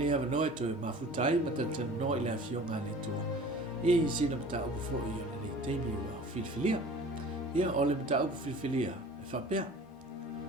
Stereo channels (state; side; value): normal; both; correlation 0.44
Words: awa noe toe mafutai, ma teletonu no ili a fionga le tua. I sina mata upu fo i o le nei teimi ua filifilia. Ia ole mata upu filifilia e whapea.